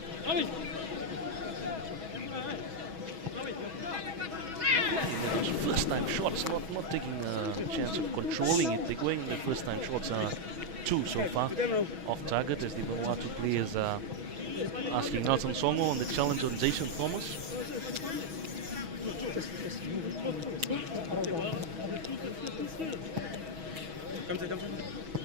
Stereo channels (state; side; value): late; left; 6.2 ms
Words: First time shots, not taking a chance of controlling it. They're going, the first time shots are 2 so far off target as the Vanuatu players are asking Nelson Songo on the challenge on Jason Thomas. Look